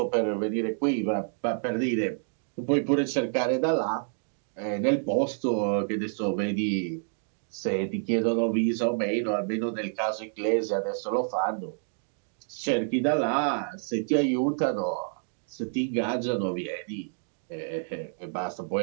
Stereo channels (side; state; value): left; silent; digital silence